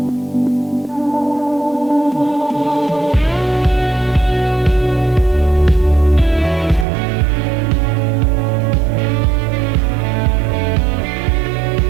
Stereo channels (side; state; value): left; drops out; at 6.9 s